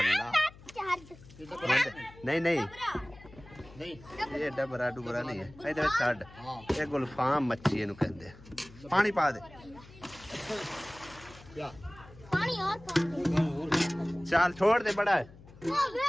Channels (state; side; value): noise; left; hum, 21 dB below the sound